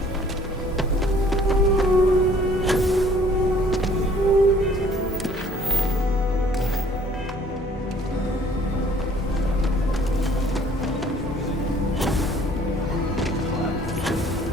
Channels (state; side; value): normal; both; correlation 0.57